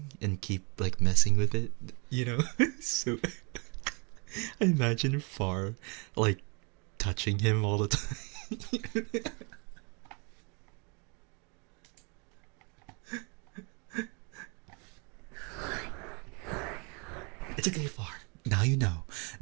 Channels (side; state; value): left; quieter; 32.5 dB